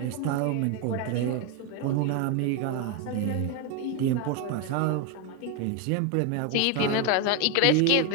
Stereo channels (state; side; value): different; both; correlation 0.02